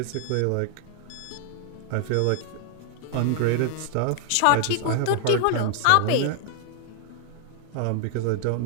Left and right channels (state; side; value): different; both; correlation 0.00